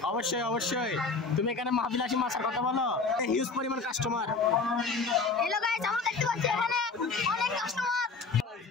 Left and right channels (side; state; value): right; quieter; 4.3 dB